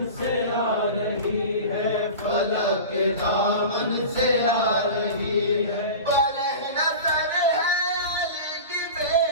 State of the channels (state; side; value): inverted; both; correlation -0.32